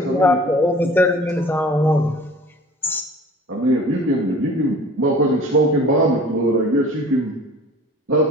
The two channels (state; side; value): normal; both; correlation 0.45